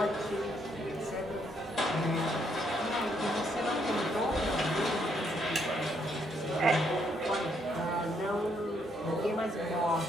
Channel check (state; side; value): normal; both; correlation 0.73